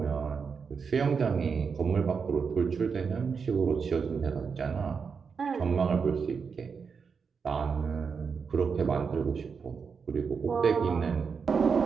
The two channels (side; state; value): left; quieter; 5.8 dB